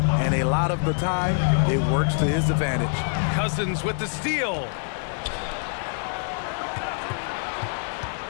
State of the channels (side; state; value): right; silent; 62 dB below the other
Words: and a lot of the time, it works to his advantage. Cousins with the steal.